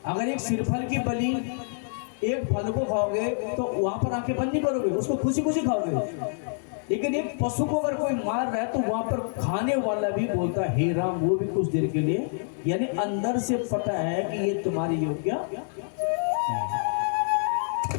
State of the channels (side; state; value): right; silent; digital silence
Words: अगर एक सिरफल की बलि, एक फल को खाओगे तो वहां पर आंखें बंद नहीं करोगे, उसको खुशी खुशी खाओगे। लेकिन एक पशु को अगर कोई मार रहा है तो वहां पर खाने वाला भी बोलता है हे राम, वो भी कुछ देर के लिए, यानी अंदर से पता है कि ये तुम्हारे योग्य नहीं।